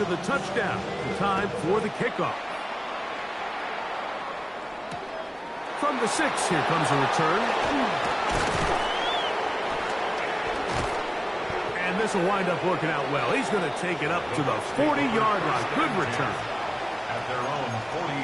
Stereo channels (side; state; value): both; identical; correlation 1.00